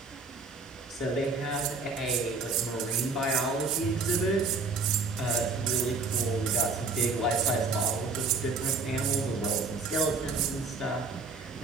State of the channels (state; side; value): quieter; left; 3.9 dB